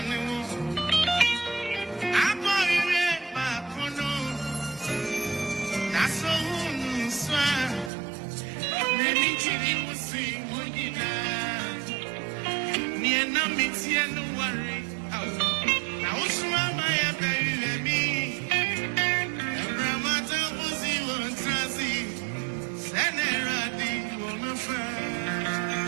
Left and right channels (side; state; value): left; drops out; at 7.9 s